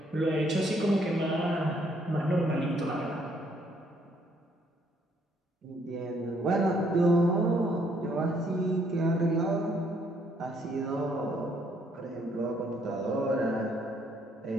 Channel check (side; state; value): both; normal; correlation 0.68